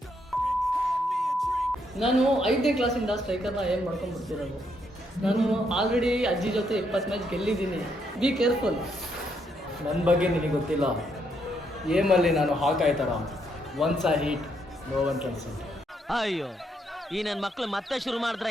Hand me a drink. ನಾನು 5ನೇ ಕ್ಲಾಸಿಂದ ಸ್ಟ್ರೈಕರ್ನ ಏನು ಮಾಡ್ಕೊಂಡ್ಬಿಡ್ತಿರೋದು. ನಾನು ಆಲ್ರೆಡಿ ಅಜ್ಜಿ ಜೊತೆ 20 ಮ್ಯಾಚ್ ಗೆಲ್ಲಿದ್ದೀನಿ. Be careful. ನನ್ನ ಬಗ್ಗೆ ನಿನಗೆ ಗೊತ್ತಿಲ್ಲ. ಏಮಲ್ಲಿ ನಾನು ಹಾಕಾಯ್ ಥರ once I hit no one can set. ಅಯ್ಯೋ ಈ ನನ್ನ ಮಕ್ಳು ಮತ್ತೆ ಶುರು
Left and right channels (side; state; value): both; normal; correlation 0.75